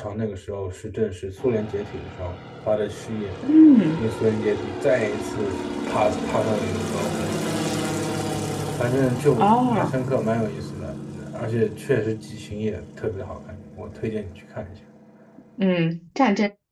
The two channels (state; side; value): identical; both; correlation 1.00